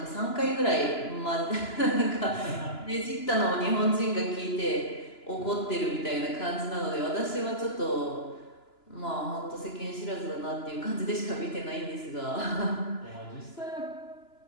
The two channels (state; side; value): late; right; 2.9 ms